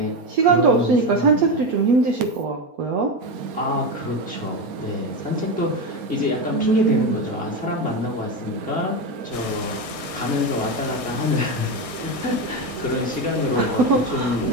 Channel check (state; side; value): late; left; 4.3 ms